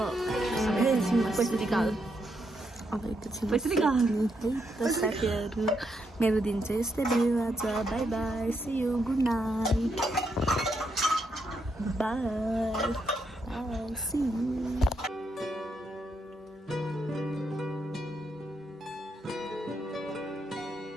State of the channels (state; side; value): normal; both; correlation 0.79